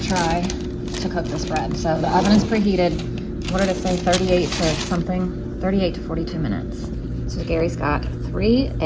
try to cook this bread. So the oven is preheated. What did it say? 38 to something? 38 to 42 minutes. So Gary's got 3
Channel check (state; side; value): identical; both; correlation 1.00